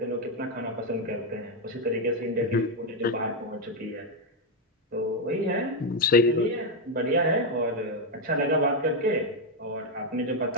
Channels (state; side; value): normal; both; correlation 0.02